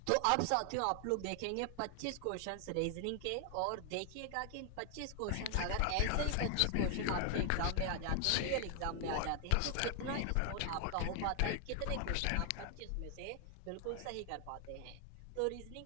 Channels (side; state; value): both; different; correlation 0.00